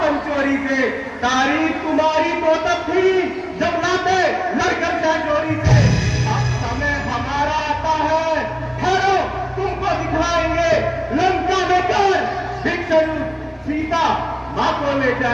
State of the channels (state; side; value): identical; both; correlation 1.00